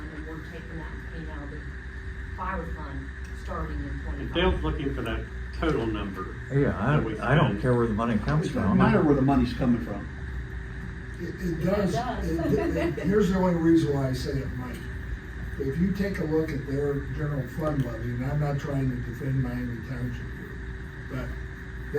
and we're taking that and paying out of the fire fund, starting in And 25. Dale's looking for that total number. Yeah, that we I don't spend. care where the money comes It from. doesn't matter where the money's coming from. It does, does. here's the only reason why I say it might. If you take a look at their general fund levy, and I'm not trying to defend Miami Township here, but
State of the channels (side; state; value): both; identical; correlation 1.00